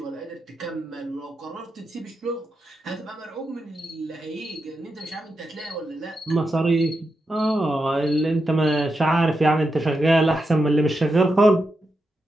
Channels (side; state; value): both; normal; correlation 0.87